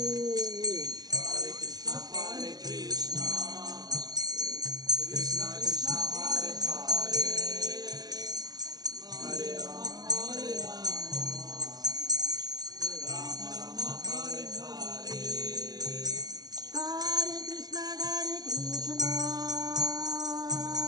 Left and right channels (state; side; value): late; left; 0.19 ms